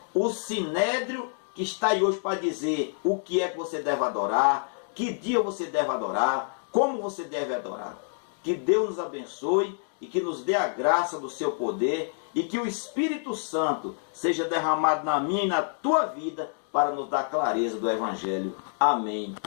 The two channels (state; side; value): silent; right; 60 dB below the other